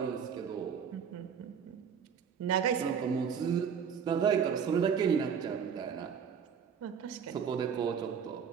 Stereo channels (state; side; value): quieter; left; 7.2 dB